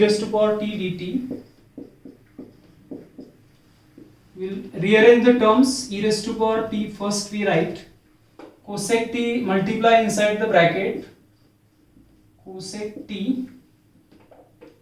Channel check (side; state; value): both; identical; correlation 1.00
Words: to power t dt. We will rearrange the terms. E raised to power t, first we write cosec t, multiply inside the bracket, cosec t